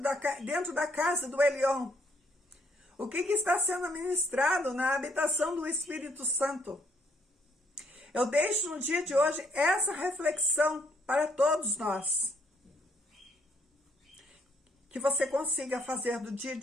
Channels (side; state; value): both; normal; correlation 0.70